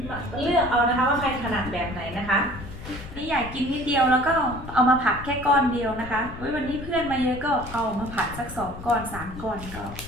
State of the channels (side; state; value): left; noise; rumble, 12 dB below the sound